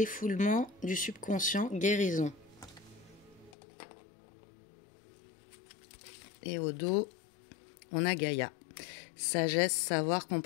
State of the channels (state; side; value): drops out; right; at 3.6 s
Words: du subconscient, guérison. Et au dos, on a Gaïa. Sagesse, savoir,